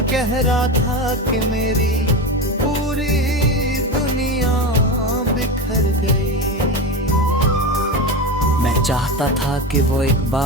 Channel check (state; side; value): normal; both; correlation 0.21